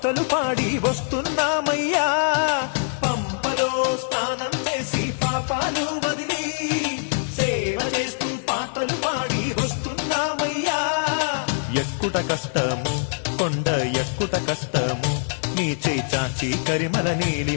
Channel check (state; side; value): silent; right; digital silence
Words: పాడి వస్తున్నామయ్యా. పంపలో స్నానం చేసి పాపాలు వదిలి సేవ చేస్తూ పాటలు పాడి వస్తున్నామయ్యా. ఎక్కుట కష్టము కొండ ఎక్కుట కష్టము నీ చేయి చాచి కరిమల